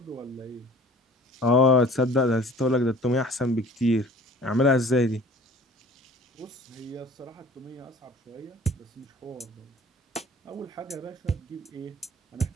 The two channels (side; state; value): both; normal; correlation 0.47